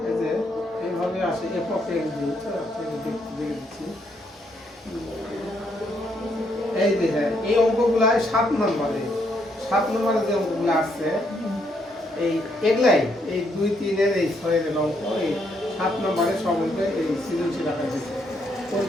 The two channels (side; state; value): both; normal; correlation 0.74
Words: এই যে এইভাবে আসে একক এক দিয়ে দেখতে দিচ্ছি এই যে এই অঙ্কগুলাই 7 নম্বরে যে অঙ্কগুলো আসছে এই এগুলাই এই 2 3 এর এই 6 এর অঙ্ক এই 7 নম্বরে সব অঙ্ক এই সৃজনশীল রাখা হয়েছে